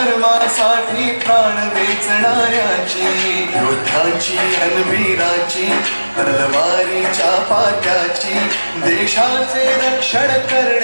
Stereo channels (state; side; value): inverted; both; correlation -1.00